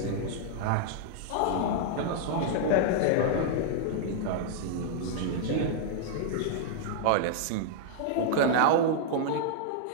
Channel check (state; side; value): different; both; correlation -0.01